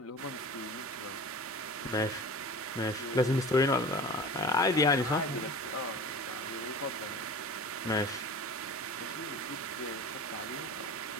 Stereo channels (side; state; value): both; normal; correlation 0.36